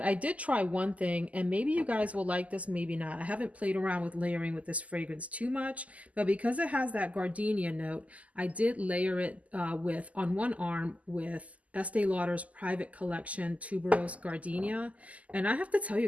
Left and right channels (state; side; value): late; left; 0.071 ms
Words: I did try one thing and maybe you guys will like this, maybe not. I haven't played around with layering with this fragrance too much, but because it has that gardenia note, I did layer it on one arm with Estee Lauder's Private Collection Tuberose Gardenia. And I have to tell